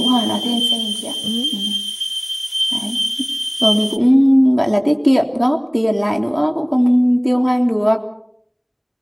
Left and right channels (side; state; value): both; identical; correlation 1.00